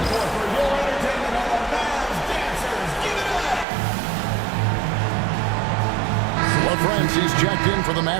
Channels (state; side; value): drops out; left; at 3.7 s